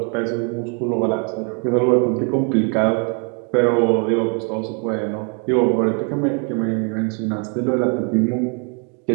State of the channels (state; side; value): quieter; left; 38.3 dB